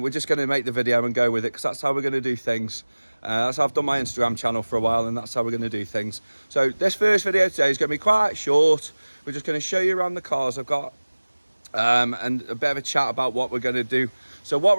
just going to make the video and go with it because that's how we're going to do things. That's how I've done my Instagram channel for a while, and that's how we're going to do things. So this first video today is going to be quite short. We're just going to show you around the cars I've got and a bit of a chat about what we're going to do. So what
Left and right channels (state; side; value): inverted; both; correlation -1.00